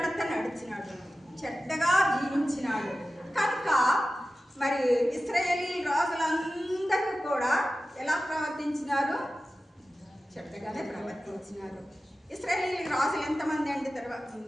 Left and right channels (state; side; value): normal; both; correlation 0.94